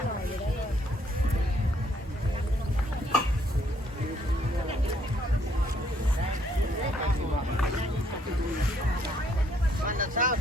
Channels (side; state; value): both; normal; correlation 0.68